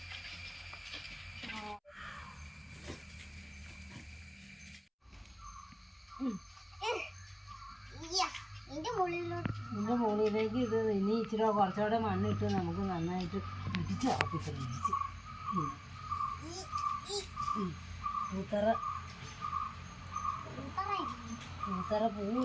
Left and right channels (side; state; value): both; identical; correlation 1.00